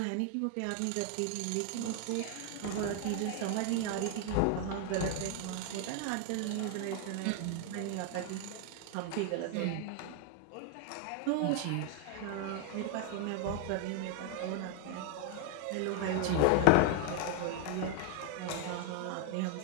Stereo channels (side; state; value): both; different; correlation 0.00